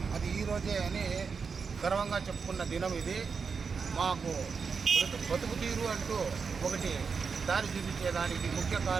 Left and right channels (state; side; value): quieter; left; 5.5 dB